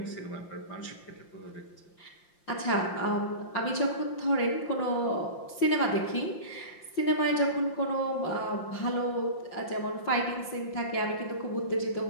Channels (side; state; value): right; late; 5.7 ms